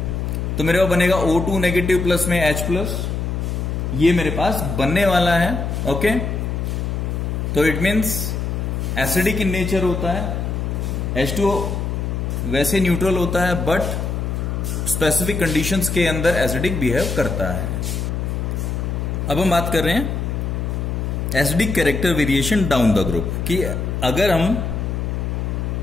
तो मेरे पास बनेगा O2 नेगेटिव प्लस में H प्लस, ये मेरे पास बनने वाला है। ओके, तो it means acidic in nature होता है। H2O वैसे न्यूट्रल होता है बट स्पेसिफिक कंडीशंस के अंदर एसिडिक बिहेव करता है। अब हम बात कर रहे हैं acidic character variation down the group कि अगर हम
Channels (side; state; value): left; noise; hum, 2 dB below the sound